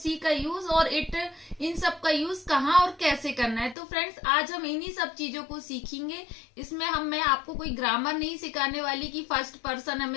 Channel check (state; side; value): drops out; right; at 3.8 s